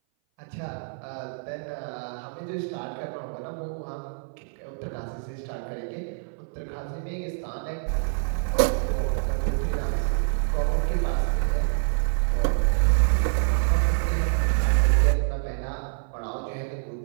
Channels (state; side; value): silent; left; 58 dB below the other